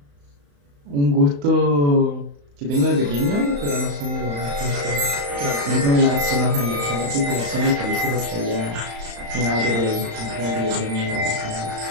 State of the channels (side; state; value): left; late; 35 ms